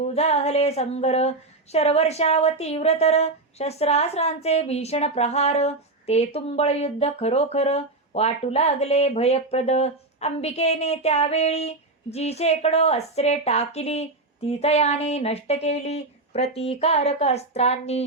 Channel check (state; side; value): quieter; left; 3.1 dB